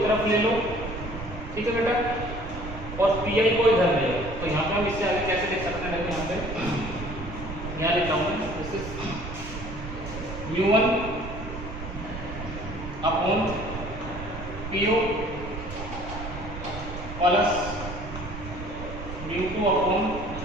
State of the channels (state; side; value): noise; right; rumble, 9 dB below the sound